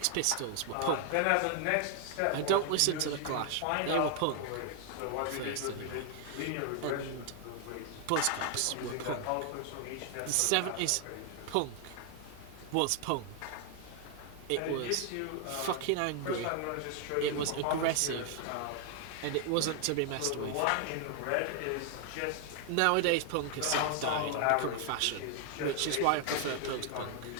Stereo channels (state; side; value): different; both; correlation 0.00